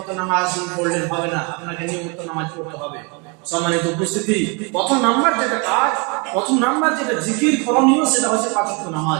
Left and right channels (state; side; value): quieter; left; 30.7 dB